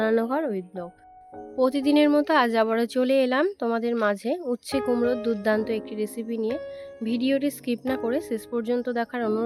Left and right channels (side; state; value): both; identical; correlation 1.00